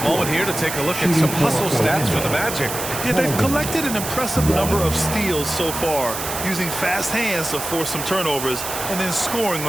moment here to take a look at some hustle stats for the Magic. Yeah, they've collected an impressive number of steals so far, using fast hands to force some turnovers and then scoring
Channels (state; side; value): noise; right; hiss, 6 dB below the sound